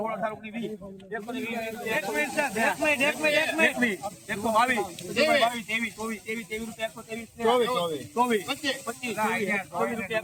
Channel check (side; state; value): both; identical; correlation 1.00